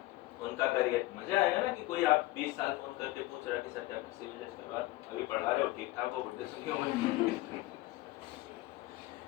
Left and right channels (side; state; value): right; quieter; 18.6 dB